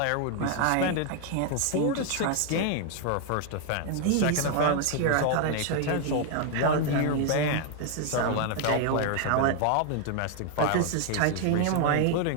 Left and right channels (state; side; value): different; both; correlation 0.00